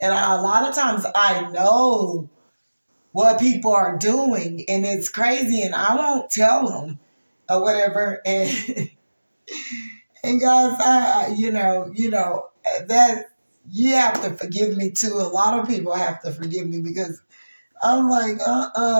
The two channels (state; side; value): inverted; both; correlation -1.00